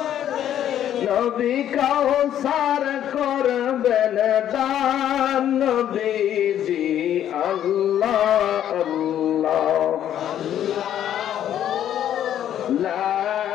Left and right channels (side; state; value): right; quieter; 10.7 dB